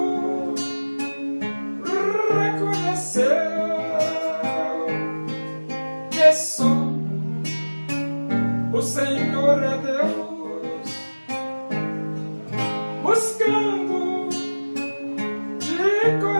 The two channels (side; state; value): both; inverted; correlation -1.00